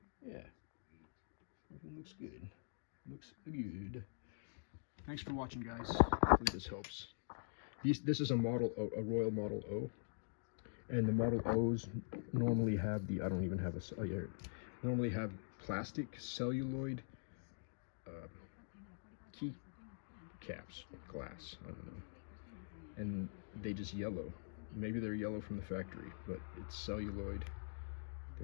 yeah, everything looks good. Looks good. Thanks for watching, guys. Hopefully this helps. This is a Royal Model O, and the Model O's normally have the, I don't even have a, normally have plastic celluloid key caps, glass, I don't know, and they just yellow. Maybe they're yellow from the factory, but it's celluloid.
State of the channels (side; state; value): right; silent; digital silence